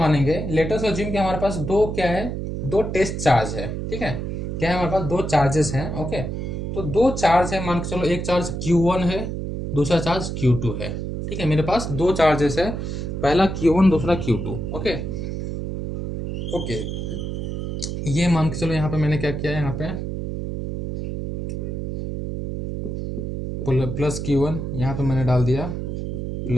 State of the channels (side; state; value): right; noise; hum, 4 dB below the sound